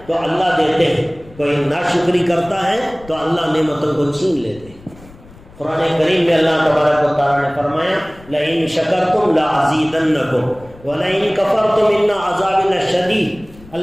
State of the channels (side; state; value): left; noise; rumble, 23 dB below the sound